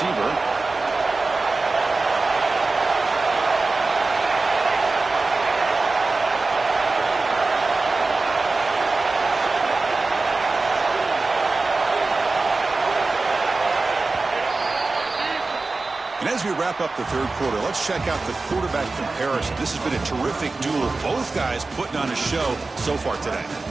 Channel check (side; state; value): left; quieter; 3.6 dB